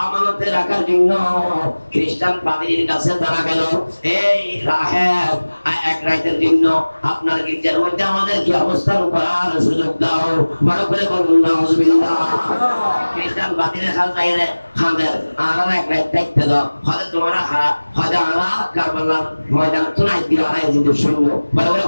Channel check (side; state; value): both; inverted; correlation -1.00